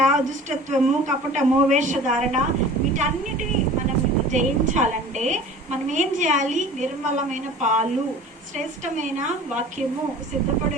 దుష్టత్వము, కపటము, వేషధారణ వీటన్నిటిని మనం జయించాలంటే మనం ఏం చేయాలి? నిర్మలమైన పాలు, శ్రేష్టమైన వాక్యము, సిద్ధపడి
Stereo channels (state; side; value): normal; both; correlation 0.43